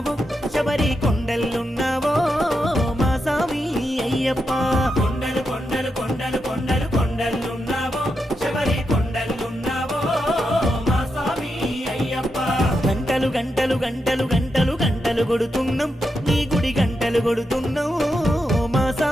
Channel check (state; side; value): normal; both; correlation 0.85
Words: శబరి కొండలున్నావో మా స్వామి అయ్యప్ప కొండలు కొండలు కొండలు కొండలు కొండలున్నావో శబరి కొండలున్నావో మా స్వామి అయ్యప్ప గంటలు గంటలు గంటలు గంటలు గంటలు కొడుతున్నాం నీ గుడి గంటలు కొడుతున్నాం మా